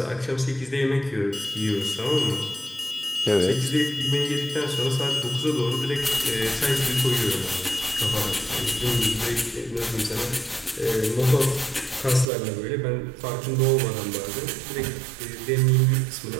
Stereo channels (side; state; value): left; drops out; at 12.2 s